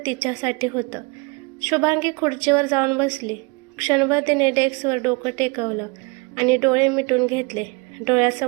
तिच्यासाठी होतं. शुभांगी खुर्चीवर जाऊन बसली. क्षणभर तिने डेस्कवर डोकं टेकवलं आणि डोळे मिटून घेतले.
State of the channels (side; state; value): left; quieter; 29.3 dB